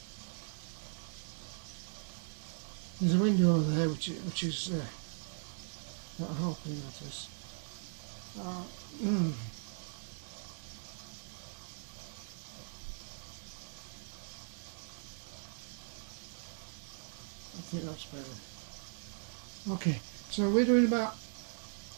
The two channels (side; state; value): left; silent; 52 dB below the other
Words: There's a window over there which is not helping, that is. I think that's better. Okay, so we're doing about